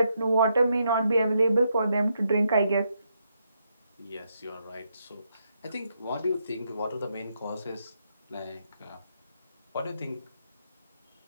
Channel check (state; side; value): inverted; both; correlation -0.79